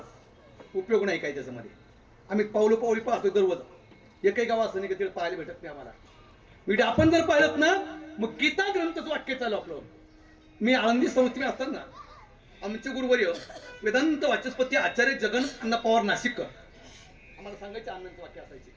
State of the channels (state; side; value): identical; both; correlation 1.00